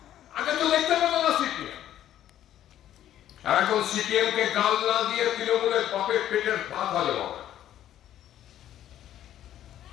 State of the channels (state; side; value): quieter; right; 11.7 dB